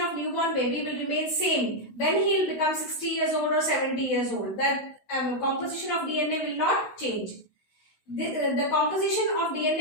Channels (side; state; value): right; late; 16 ms